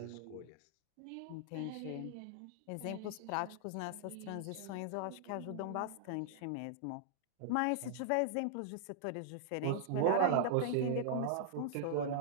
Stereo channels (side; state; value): both; different; correlation -0.01